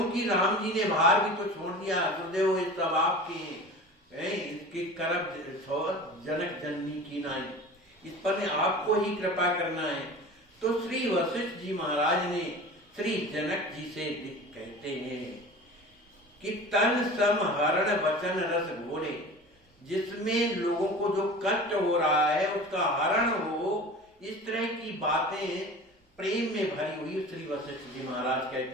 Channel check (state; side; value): normal; both; correlation 0.37